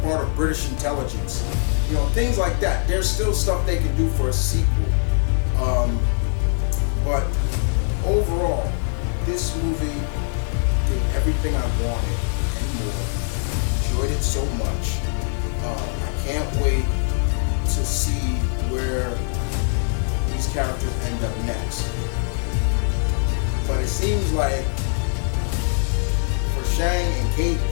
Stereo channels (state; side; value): silent; right; 62 dB below the other